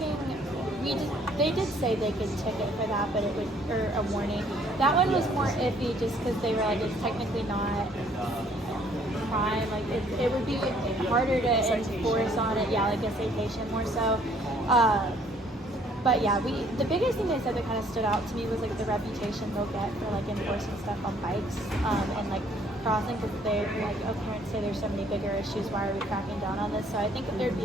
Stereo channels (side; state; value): both; normal; correlation 0.62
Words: they did say they could ticket for that, but it would, or a warning. That one was more iffy just because they were like, it's technically not crime, like it would be harder to enforce on it, yeah, like a citation more so. But yeah, the biggest thing they said that kind of stood out to me was like the reputation they'll get for like enforcing stuff on bikes and like crossing, because they're like, oh, parents say there's so many bigger issues, why are we cracking down on this? So I think that there'd